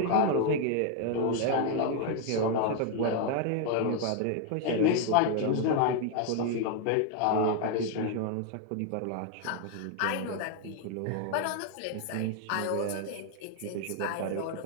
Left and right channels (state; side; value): different; both; correlation 0.00